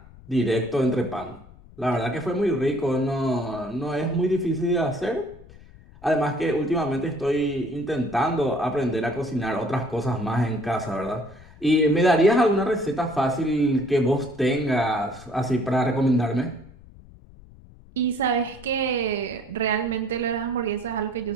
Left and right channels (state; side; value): noise; left; rumble, 22 dB below the sound